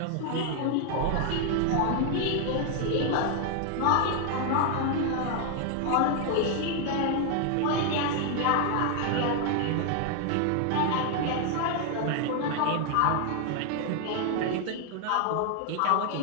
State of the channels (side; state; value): both; different; correlation 0.00